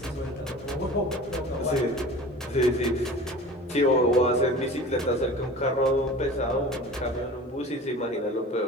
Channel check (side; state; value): both; normal; correlation 0.39